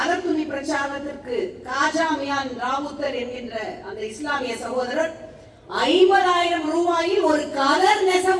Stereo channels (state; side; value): identical; both; correlation 1.00